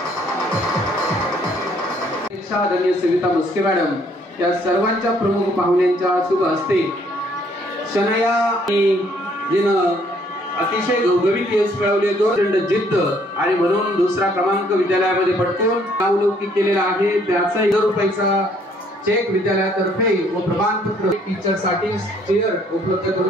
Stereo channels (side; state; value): both; normal; correlation 0.64